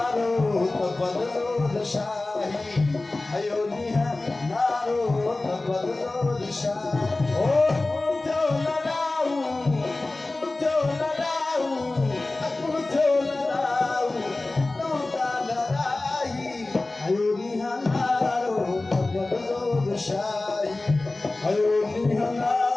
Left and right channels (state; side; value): quieter; right; 3.1 dB